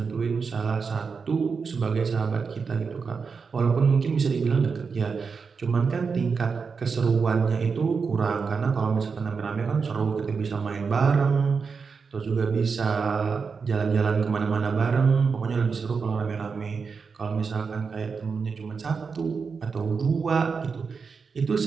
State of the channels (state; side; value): quieter; left; 5.3 dB